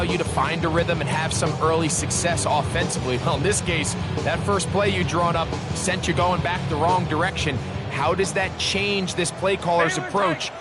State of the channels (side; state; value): both; identical; correlation 1.00